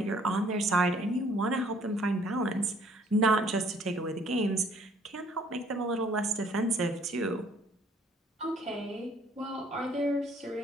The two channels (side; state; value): both; normal; correlation 0.60